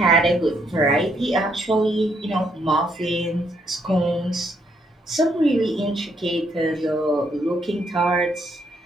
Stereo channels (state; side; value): normal; both; correlation 0.73